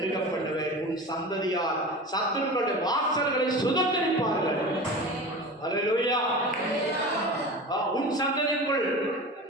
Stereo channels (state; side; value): normal; both; correlation 0.32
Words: பண்ணுவேன். உன் சந்ததியார் சத்துருக்களுடைய வாசல்களை சுதந்திரிப்பார்கள். அல்லேலூயா. உன் சந்ததிக்குள்